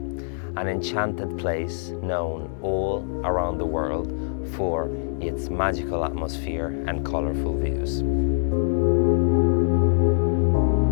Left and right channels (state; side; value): silent; right; digital silence